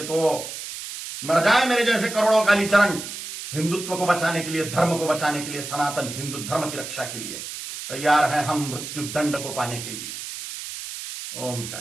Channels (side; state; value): right; noise; hiss, 9 dB below the sound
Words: तो मर जाए मेरे जैसे करोड़ों कालीचरण, हिंदुत्व को बचाने के लिए, धर्म को बचाने के लिए, सनातन हिंदू धर्म की रक्षा के लिए तैयार है हम मृत्यु दंड को पाने के लिए। ओम